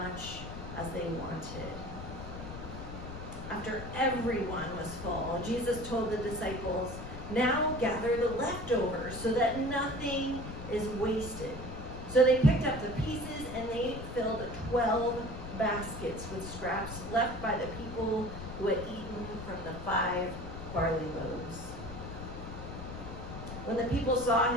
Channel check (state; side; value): noise; left; rumble, 9 dB below the sound